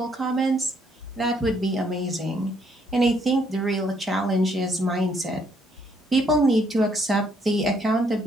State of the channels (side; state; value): both; normal; correlation 0.69